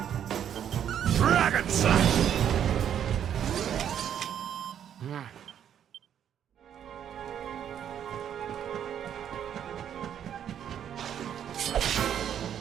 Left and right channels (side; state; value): left; quieter; 9.4 dB